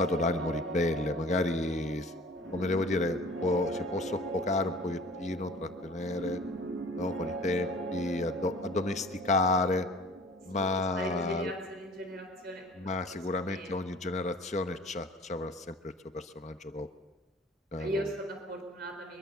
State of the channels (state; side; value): normal; both; correlation 0.47